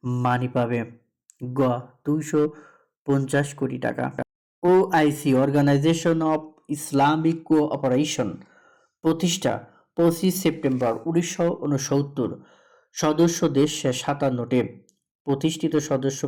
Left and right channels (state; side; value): identical; both; correlation 1.00